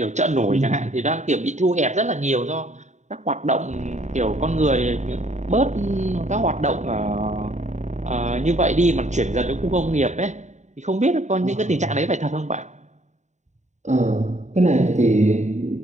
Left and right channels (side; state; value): left; late; 0.34 ms